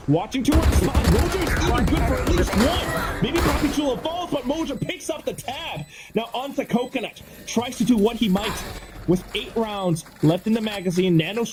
Watching towards the spot. Mojo's even good for at least one. Maybe Poppy Jewel falls, but Mojo picks up the tab. Now onto Coconut. Tries to do what he might. With 8 rounds left in the magazine,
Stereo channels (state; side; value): identical; both; correlation 1.00